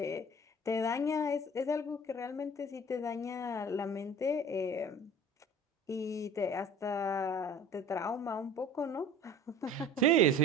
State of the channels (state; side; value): normal; both; correlation 0.43